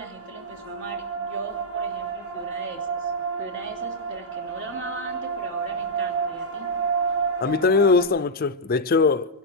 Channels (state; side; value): normal; both; correlation -0.06